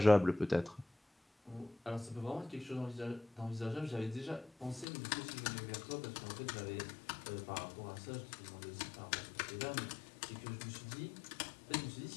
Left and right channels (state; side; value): drops out; right; at 4.9 s